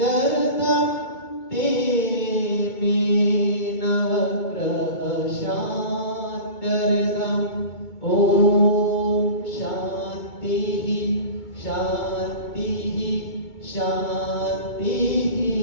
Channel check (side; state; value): right; late; 2.2 ms